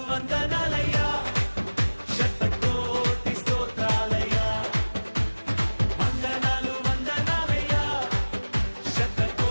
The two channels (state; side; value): inverted; both; correlation -1.00